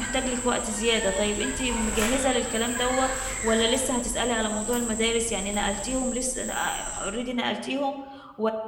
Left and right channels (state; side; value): identical; both; correlation 1.00